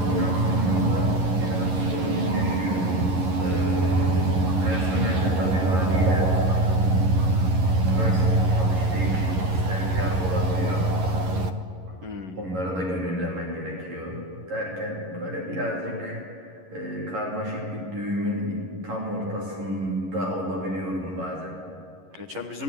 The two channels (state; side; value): late; left; 11 ms